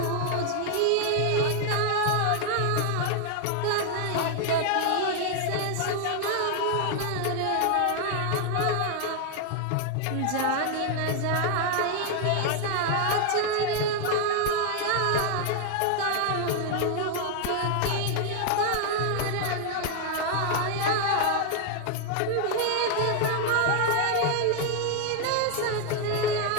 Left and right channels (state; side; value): different; both; correlation 0.00